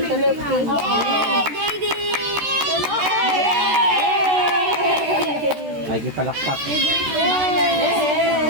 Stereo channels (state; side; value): late; left; 13 ms